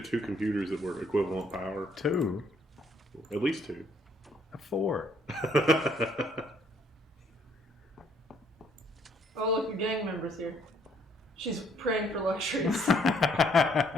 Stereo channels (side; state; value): both; normal; correlation 0.66